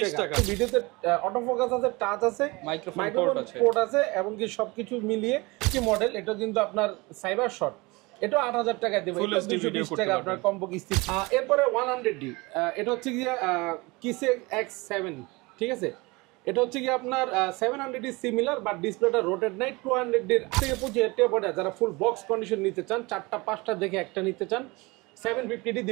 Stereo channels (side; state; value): left; quieter; 24.5 dB